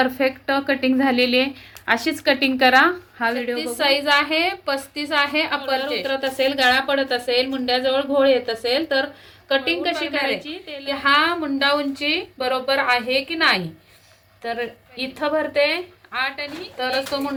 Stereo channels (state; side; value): identical; both; correlation 1.00